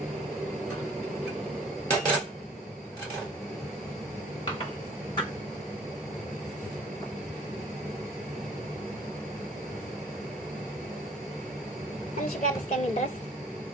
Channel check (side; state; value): both; normal; correlation 0.55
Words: ትንሽ ጋር እስከሚል ድረስ